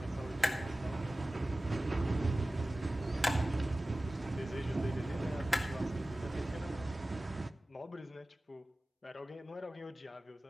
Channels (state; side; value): normal; both; correlation 0.96